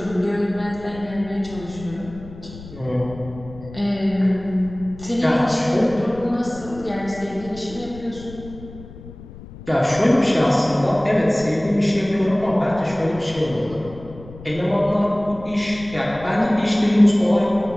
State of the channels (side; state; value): left; noise; rumble, 16 dB below the sound